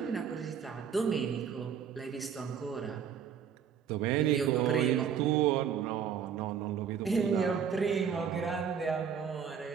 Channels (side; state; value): left; quieter; 7.7 dB